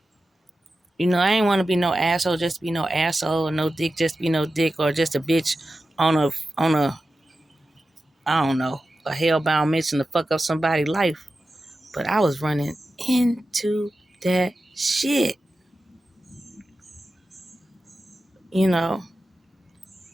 you know, I ain't want to be no asshole just to be no asshole, or no dick just to be no dick, or just a bitch on a I don't know, a hellbound mission to fuck up somebody's life. But I was running into that shit, you know.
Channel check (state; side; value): normal; both; correlation 0.93